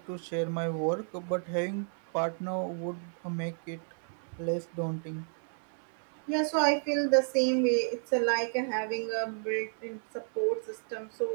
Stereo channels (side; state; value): left; silent; 56 dB below the other